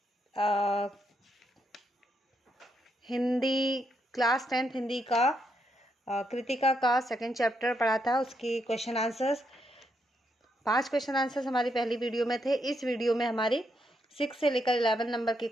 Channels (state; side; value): normal; both; correlation 0.79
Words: Hindi class 10th Hindi का कृतिका का सेकंड चैप्टर पढ़ा था। उसकी क्वेश्चन आंसर्स 5 क्वेश्चन आंसर्स हमारी पहली वीडियो में थे। इस वीडियो में हमारी 6 से लेकर 11 नंबर के